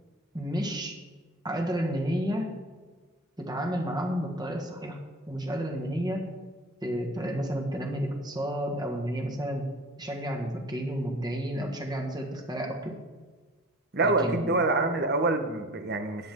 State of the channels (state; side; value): normal; both; correlation 0.44